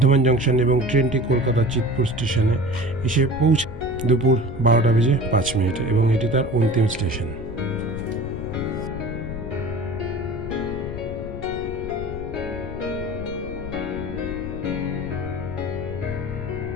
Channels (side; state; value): left; noise; rumble, 10 dB below the sound